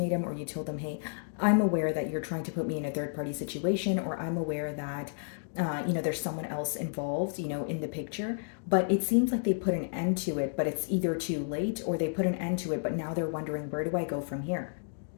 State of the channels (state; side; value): silent; right; digital silence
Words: or you told them, hey, I'm aware that you're trying to put me in a third party situation, or I'm aware that, there's someone else involved, in the picture. But it seems like they put an end to it, but it's either too late, or they put an end to it, but now they're wondering, where do I go from here?